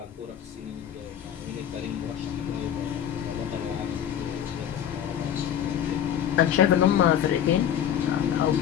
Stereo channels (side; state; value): right; quieter; 9.7 dB